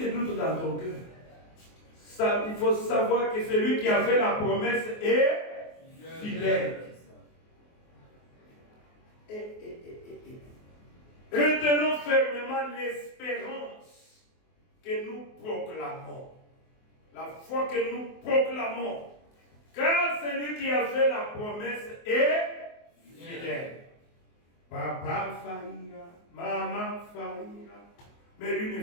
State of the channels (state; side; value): late; right; 24 ms